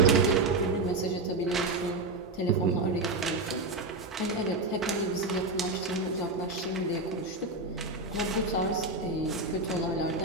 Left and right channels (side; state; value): left; quieter; 3.1 dB